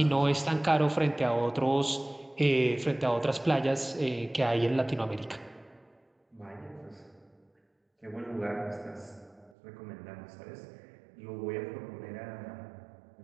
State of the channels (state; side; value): drops out; left; at 9.6 s